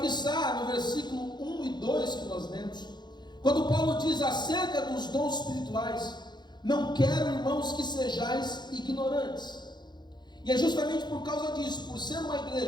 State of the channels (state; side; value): late; right; 0.21 ms